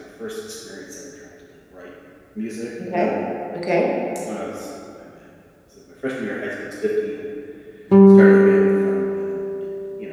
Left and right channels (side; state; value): both; identical; correlation 1.00